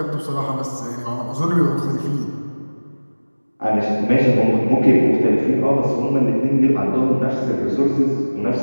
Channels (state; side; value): inverted; both; correlation -1.00